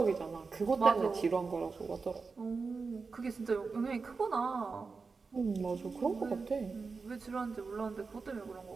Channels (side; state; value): left; quieter; 4.6 dB